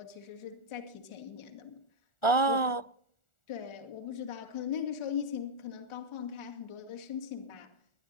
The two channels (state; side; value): late; right; 1.4 ms